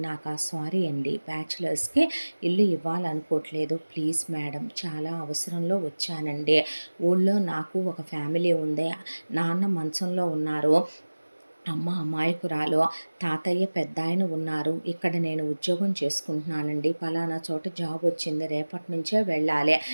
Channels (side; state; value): both; inverted; correlation -1.00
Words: సారీ అండి, బ్యాచులర్స్కి ఇల్లు ఇవ్వాలనుకోవట్లేదు, ప్లీజ్ మేడం, చాలా అవసరంలో వచ్చానండి. ఊళ్ళో నాకు ఒక ఫ్యామిలీ ఉంది, నాన్న మంచంలో ఉన్నారు, అమ్మ అమాయకురాలు, తాతయ్య పెద్ద ఆయన ఉన్నారు. ఇక్కడ నేను ఉద్యోగం చేసుకుంటున్నానండి, పలానా చోట జాబ్ వచ్చింది, రేపటి నుంచే వెళ్ళాలి.